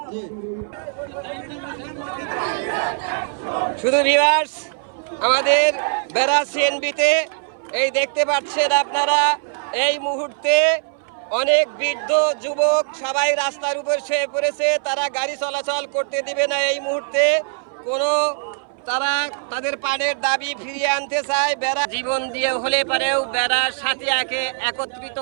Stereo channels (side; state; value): left; silent; 61 dB below the other